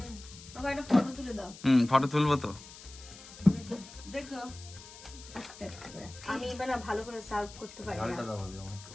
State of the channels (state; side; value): noise; left; hiss, 17 dB below the sound